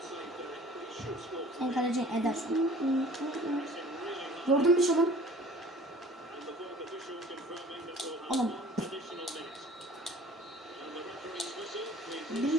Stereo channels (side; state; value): both; normal; correlation 0.48